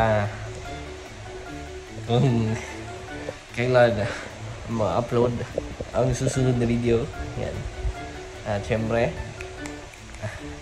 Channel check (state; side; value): identical; both; correlation 1.00